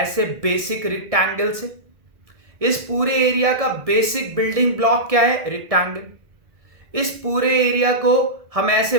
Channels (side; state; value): left; late; 1.7 ms